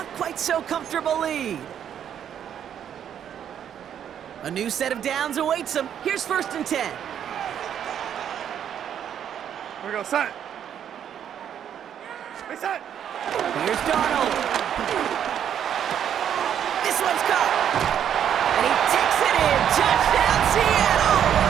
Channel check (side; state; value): left; quieter; 9.3 dB